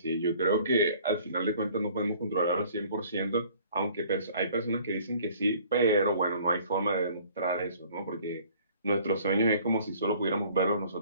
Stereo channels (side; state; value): both; inverted; correlation -0.54